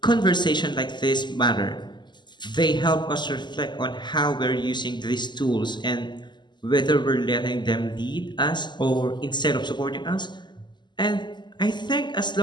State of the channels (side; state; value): right; late; 0.21 ms